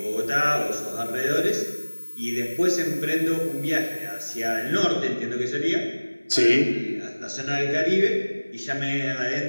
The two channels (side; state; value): both; inverted; correlation -1.00